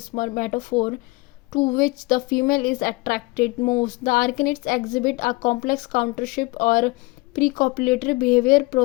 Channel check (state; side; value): quieter; right; 23.9 dB